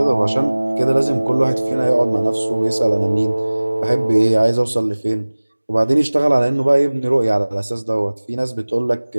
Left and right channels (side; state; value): both; inverted; correlation -1.00